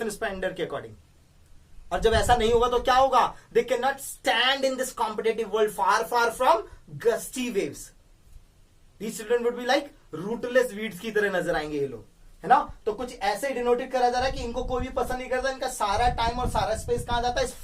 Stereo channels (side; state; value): both; identical; correlation 1.00